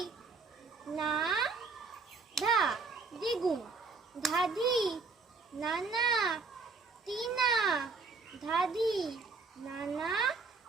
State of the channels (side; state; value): left; quieter; 4.3 dB